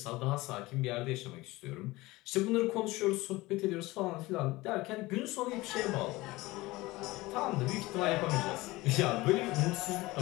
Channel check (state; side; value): quieter; right; 20.3 dB